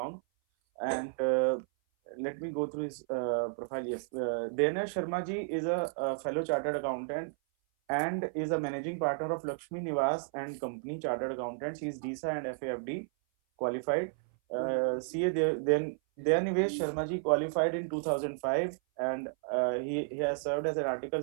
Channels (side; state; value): left; silent; 56 dB below the other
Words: And let me go through his profile. Yes, Dana Sharma ji is a fellow chartered accountant and is a managing partner of Lakshmi Niwas and Company Chartered Accountants. He is DISA and FAFD qualified. CA then Dayanivesh Sharma ji qualified in 2005, and he has served as an article